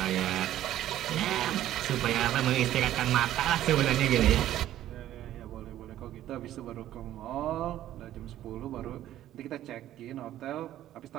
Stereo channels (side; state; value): left; quieter; 12.8 dB